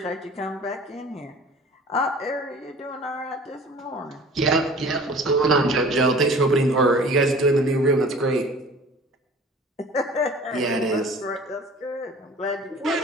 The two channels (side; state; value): both; normal; correlation 0.45